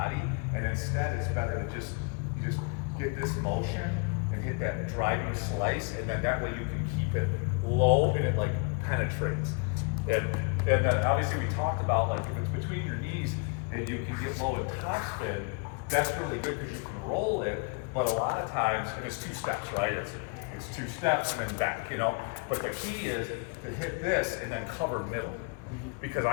and instead it's better to just, you just get this motion and hit that driving slice, and then that way you can keep it low and it like penetrates. And then obviously we talked about like if it's between your knees and you can get low and top spin, that's really good because you can roll it, but a lot of times, and it's 2 steps, right? It's 2 steps and then back, you know? But the key is to hit this and then cover middle, because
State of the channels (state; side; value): quieter; right; 33.6 dB